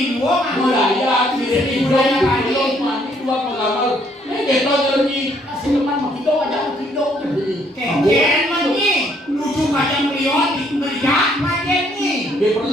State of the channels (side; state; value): both; normal; correlation 0.67